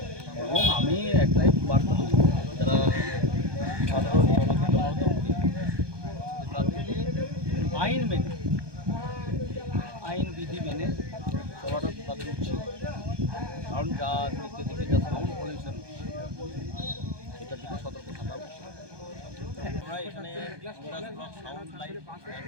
এবং আমি একটাই বার্তা দেবো, যারা সাধারণ তাদেরকে আইন মেনে, আইন বিধি মেনে চলাটা তাদের উচিত। কারণ যা দিকে দিকে যা সাউন্ড পলিউশন, সেটার দিকে সতর্ক থাকা উচিত। আমরা এখানে সাউন্ড লাইট অ্যান্ড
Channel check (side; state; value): left; late; 1.2 ms